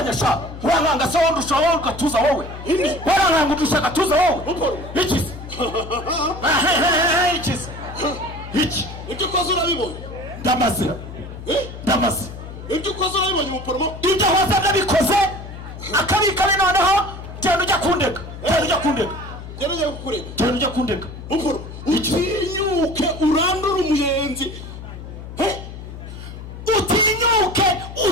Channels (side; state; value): left; noise; hum, 12 dB below the sound